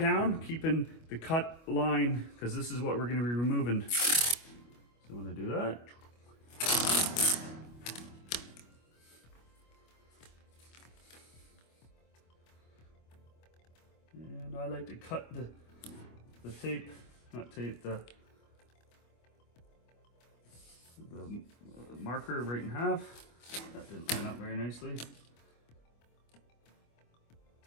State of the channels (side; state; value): right; late; 25 ms